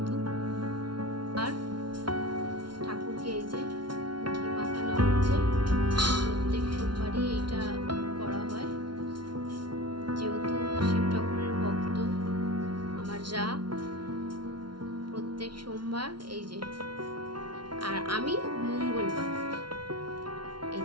আর ঠাকুরকে এই যে ঘি মাখানো হচ্ছে। প্রত্যেক সোমবারই এইটা করা হয়, যেহেতু শিব ঠাকুরের ভক্ত আমার যা। প্রত্যেক সোমবার এই যে, আর আমি মঙ্গলবার এই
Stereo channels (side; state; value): left; late; 0.72 ms